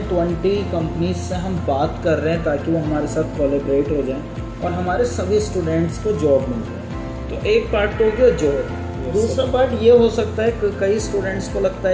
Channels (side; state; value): both; identical; correlation 1.00